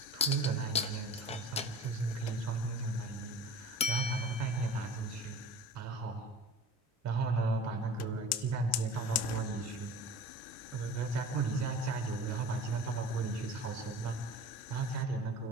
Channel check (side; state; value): both; normal; correlation 0.39